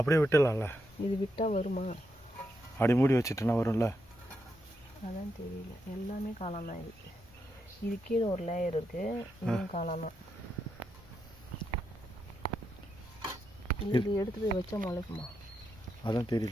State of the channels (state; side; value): normal; both; correlation 0.83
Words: விட்டுடலாம்ல? இது விட்டால் வருமா? அப்படி மூடி வச்சுட்டுனா வரும்ல? அதான் தெரியல. எல்லாமே காளான் தான். இது கீழே ஒரு லேயர் இருக்குது. இதுவும் காளான் தான். இது எடுத்து போய் வச்சா முளைக்குமா? அதான்